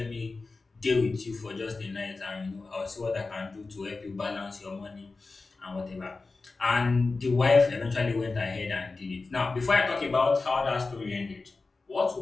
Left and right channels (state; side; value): quieter; right; 3.8 dB